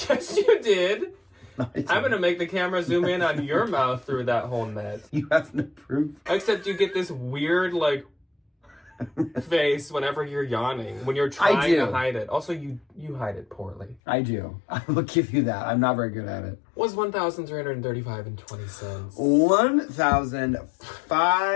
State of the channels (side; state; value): right; drops out; at 14.0 s